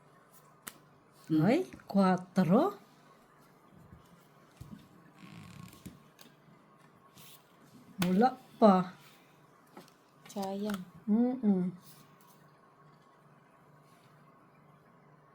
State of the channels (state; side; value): identical; both; correlation 1.00